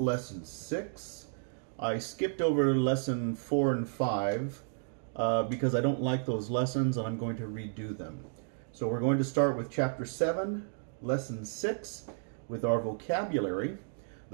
6. I skipped over Lesson 4 and 5 because I don't like those lessons, and I'm going to redo them. So we're going to start with Chapter 7, Lesson 6 with our vocabulary.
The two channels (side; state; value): left; silent; digital silence